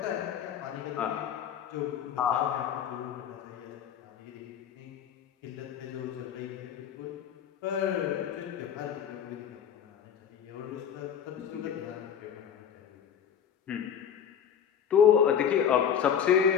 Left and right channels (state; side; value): quieter; right; 8.4 dB